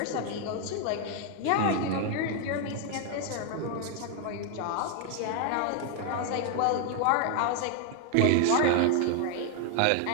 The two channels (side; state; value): both; different; correlation 0.00